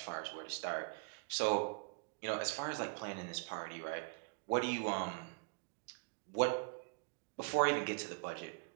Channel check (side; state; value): left; quieter; 33.9 dB